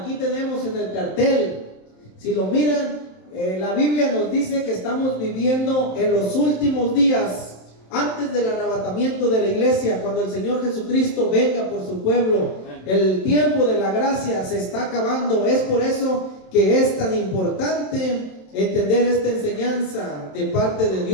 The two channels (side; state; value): right; late; 27 ms